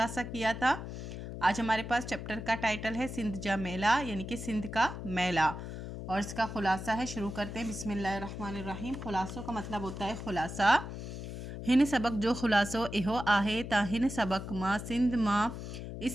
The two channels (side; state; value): left; noise; hum, 8 dB below the sound